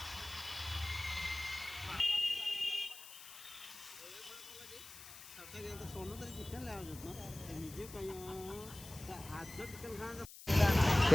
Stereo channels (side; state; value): left; noise; hiss, 15 dB below the sound